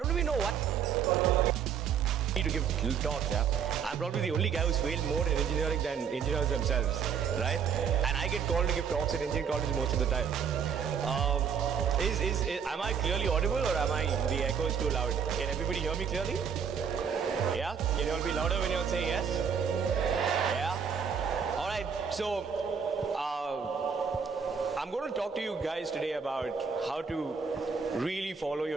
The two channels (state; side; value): quieter; left; 6.9 dB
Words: do we know what? To give talks, yeah. I'm probably the only guy who's failed more in engineering than engineers themselves, right? And I get called to give talks at engineering college most of the time. Am I clearly audible, or am I the echo is too loud? Can everybody hear me clearly? Yeah? Can you all be louder when you all say yes? Yeah? All right. So I'm going to talk to you guys today about how to really follow